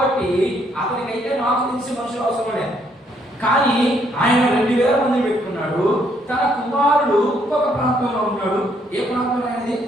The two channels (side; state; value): both; normal; correlation 0.70